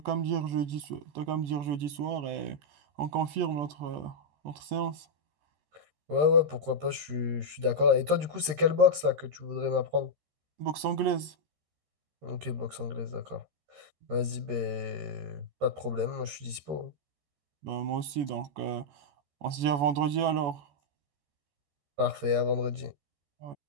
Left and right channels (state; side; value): late; left; 13 ms